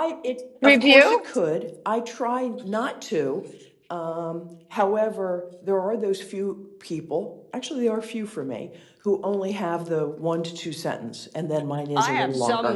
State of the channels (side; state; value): both; identical; correlation 1.00